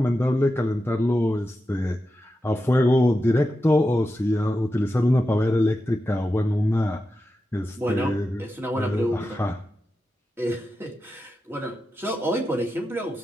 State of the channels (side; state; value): both; normal; correlation 0.90